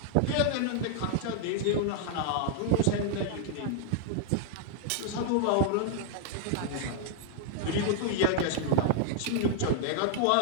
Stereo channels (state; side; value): different; both; correlation -0.01